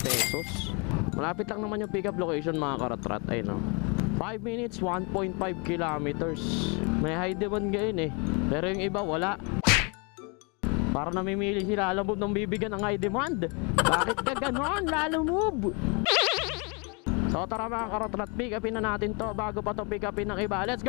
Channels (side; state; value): right; quieter; 32.6 dB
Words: Malapit lang naman yung pick up location mga karatrat. Ay no, 5 minutes, 1.5 kilometers. May high demand ngayon eh, pero yung iba wala. Para namimili sila Lalamove ng bibigyan ng high demand. Bakit ka ganon, Lalamove? So tara mga karatrat, pick upin na natin to bago pa to pick upin ng iba. Let's